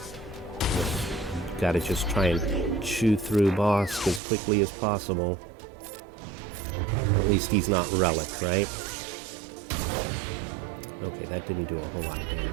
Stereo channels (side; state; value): left; drops out; at 4.2 s